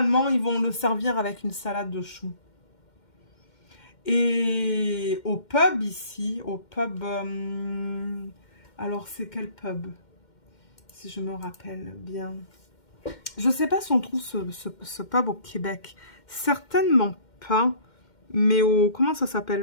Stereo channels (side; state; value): right; late; 2.1 ms